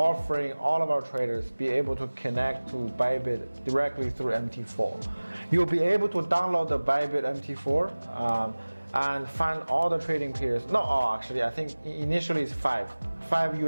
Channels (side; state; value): both; inverted; correlation -1.00